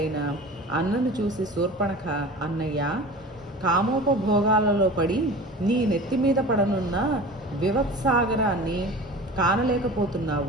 అన్నను చూసి శూర్పణఖ, అన్నయ్య, కామోపభోగాలలో పడి నీ నెత్తి మీద పడనున్న వివత్సాగరాన్ని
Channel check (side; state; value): both; normal; correlation 0.37